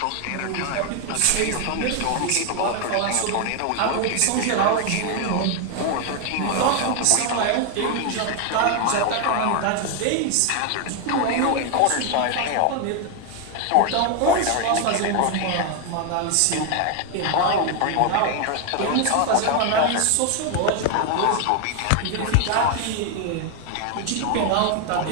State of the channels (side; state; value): both; different; correlation 0.01